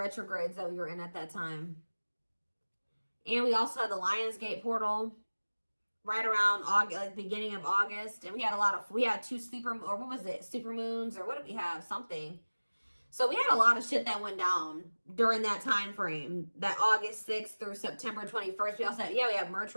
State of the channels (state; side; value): inverted; both; correlation -1.00